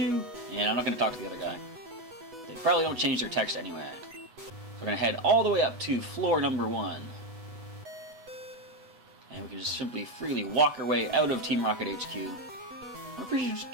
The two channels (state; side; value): late; left; 7.8 ms